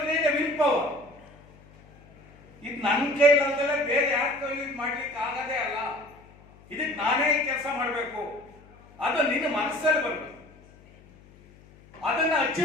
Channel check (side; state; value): left; noise; hum, 25 dB below the sound